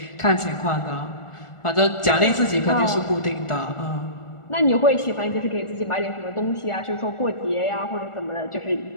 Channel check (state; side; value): late; right; 1.4 ms